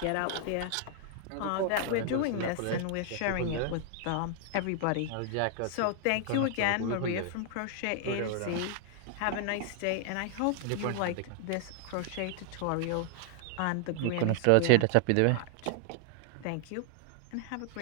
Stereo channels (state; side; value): different; both; correlation 0.00